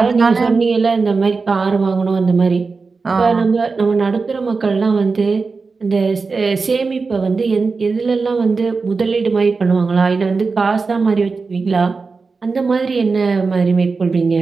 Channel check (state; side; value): quieter; left; 4.4 dB